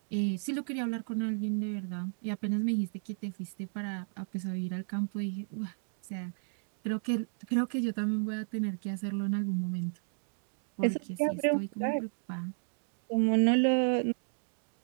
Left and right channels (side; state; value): left; silent; 56 dB below the other